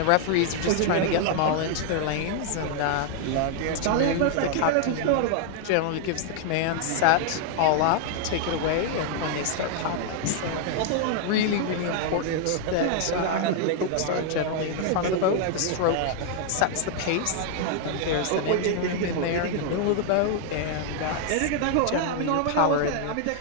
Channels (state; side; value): different; both; correlation 0.00